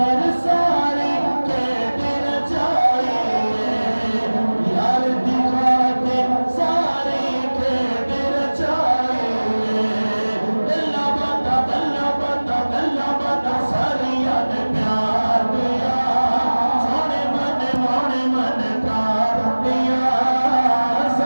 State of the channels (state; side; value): inverted; both; correlation -1.00